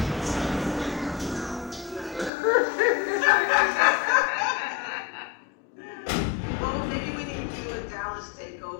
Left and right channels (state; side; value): drops out; right; at 2.3 s